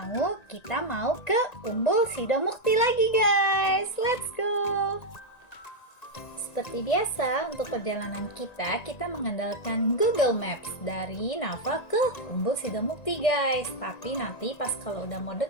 kita mau ke Umbul Sidomukti lagi guys. Let's go. Seperti biasa untuk perjalanan kita mengandalkan Google Maps dari Nafa ke Umbul Sidomukti guys. Tapi nanti pas kalau udah mau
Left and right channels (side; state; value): right; late; 1.9 ms